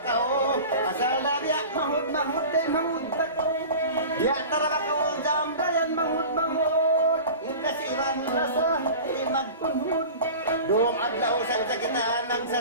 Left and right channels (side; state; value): both; inverted; correlation -0.36